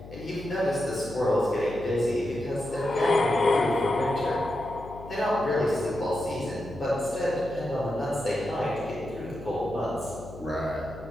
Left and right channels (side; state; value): left; noise; hum, 15 dB below the sound